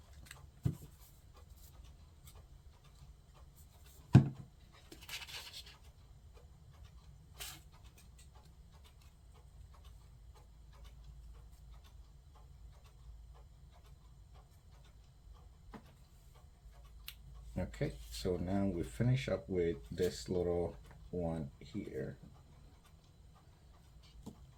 Okay, so now we finish up with this little one here.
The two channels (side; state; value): both; identical; correlation 1.00